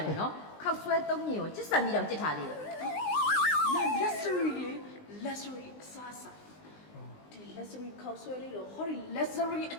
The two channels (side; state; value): right; late; 19 ms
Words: တယ်နော်ခောက်ဆွဲသုံးညင်ကိုကျစ်ဆန်ပြီးတော့ကြစ်ထားသေးတယ် နာ luxury လေ luxury အစားစားဒီ luxury ခောက်ဆွဲလေးတော့ဟောဒီ luxury အ